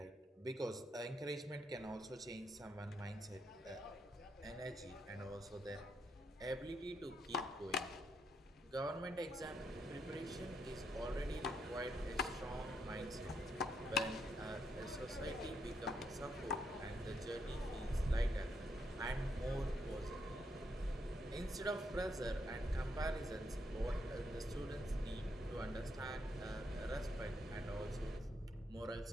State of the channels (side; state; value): both; normal; correlation 0.77